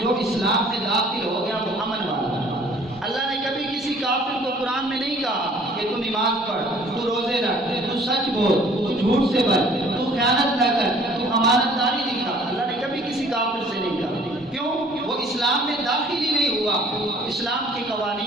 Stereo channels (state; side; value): normal; both; correlation 0.54